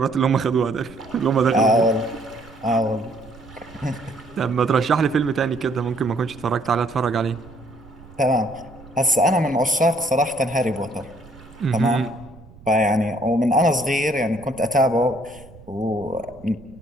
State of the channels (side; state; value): right; noise; rumble, 22 dB below the sound